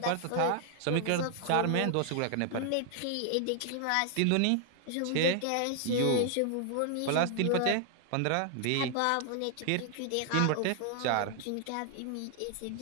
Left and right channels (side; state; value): both; different; correlation 0.00